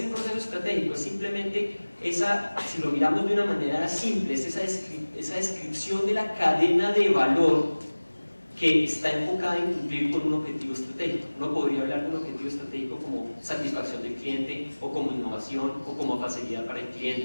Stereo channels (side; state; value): both; inverted; correlation -1.00